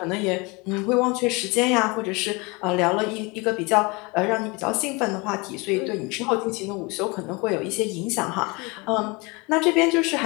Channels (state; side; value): quieter; right; 27.0 dB